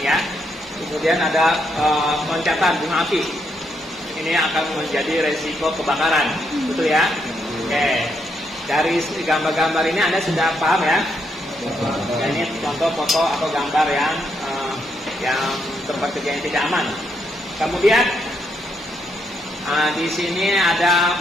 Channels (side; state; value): both; normal; correlation 0.77